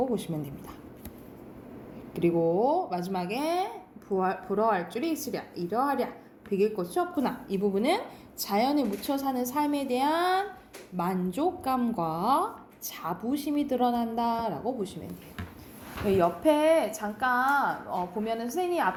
보시면 됩니다. 그리고 마지막에 부러워할 줄이 있으랴, 이러하랴, 비길 것이 없구나. 이 부분은 자연에 묻혀 사는 삶에 대한 만족감과 자부심이 드러난다라고 보시면 돼요. 옆에 잠깐 보면은 선생님이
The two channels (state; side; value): identical; both; correlation 1.00